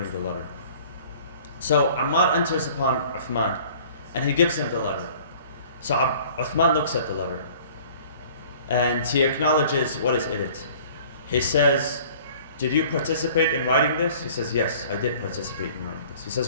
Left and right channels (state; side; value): inverted; both; correlation -0.50